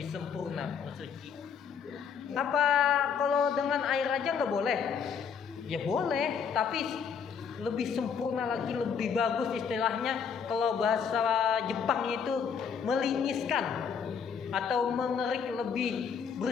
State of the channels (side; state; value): right; quieter; 6.8 dB